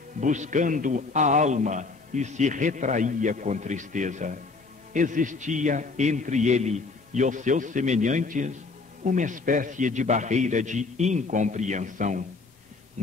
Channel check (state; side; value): quieter; right; 4.0 dB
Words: buscando a alma, e se retraía com tristeza. Existia entre ele e os seus semelhantes uma espécie de barreira de incompreensão.